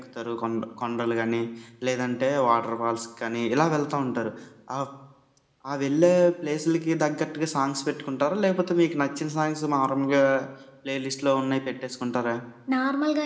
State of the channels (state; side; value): identical; both; correlation 1.00